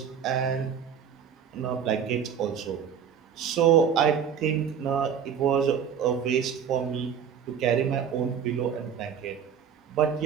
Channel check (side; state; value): left; quieter; 7.8 dB